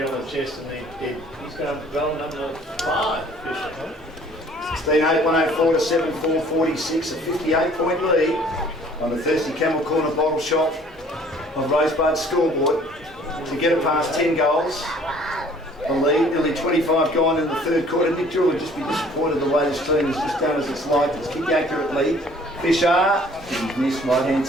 on the chest, and he's going to go number 5, Fisher. 16-8, 104 to 7-4, 46, a 58-point lead on the Thirsty Camel Corner bottle shop of Rosebud scoreboard to get it past 10 goals. The lead, nearly 25 gone in the third quarter. Nick Jewell would just be disappointed the way this team has just done as it's like. It's kicked accurately. Fisher, he's missed right hand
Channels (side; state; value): both; normal; correlation 0.55